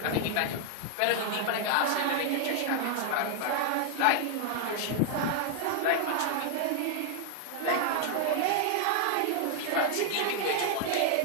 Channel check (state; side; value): different; both; correlation 0.00